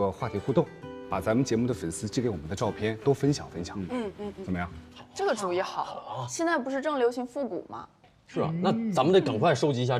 话题互动，把咱们节目的粉丝寄给我们的照片都分享分享。怎么样？这个主意好。现在不是正流行复古吗？是啊，那咱们得赶快收集一下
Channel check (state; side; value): identical; both; correlation 1.00